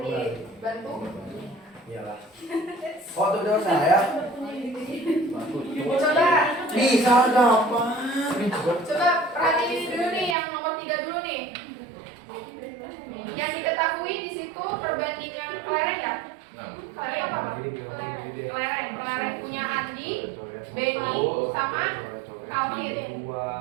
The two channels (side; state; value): left; drops out; at 10.4 s